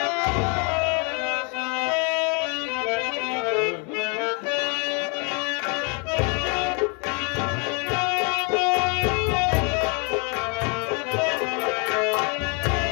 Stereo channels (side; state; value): right; quieter; 34.1 dB